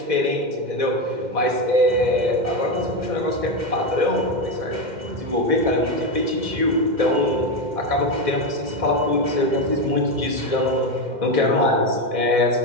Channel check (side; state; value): left; late; 2.1 ms